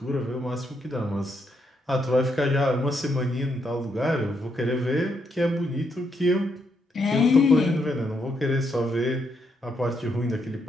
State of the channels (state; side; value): normal; both; correlation 0.78